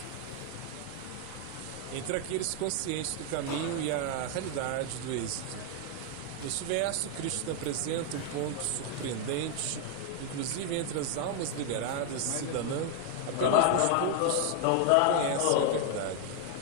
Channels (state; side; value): different; both; correlation 0.00